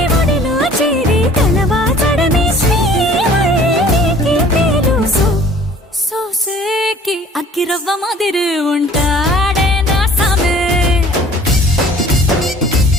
ఒడిలో చేరి తలవాచడమే శ్రీవల్లికి తెలుసు. సోసేకి అక్కిరవ్వ మాదిరి ఉంటా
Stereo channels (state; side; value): normal; both; correlation 0.51